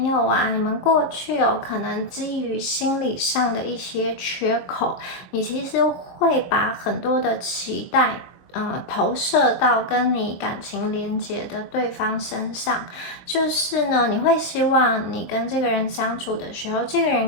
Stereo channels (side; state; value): right; late; 22 ms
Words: 友啊，你们过去可能基于心理上的一些缺口，你其实会把很多的期待投射到跟你感情连结的对方身上，就是呢，你会希望你跟这个人相处的时候，这个